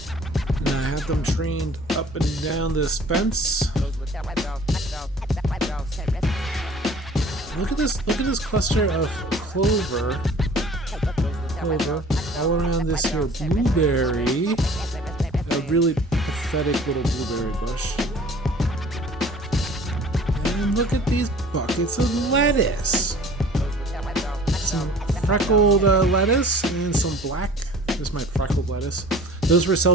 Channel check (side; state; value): both; normal; correlation 0.48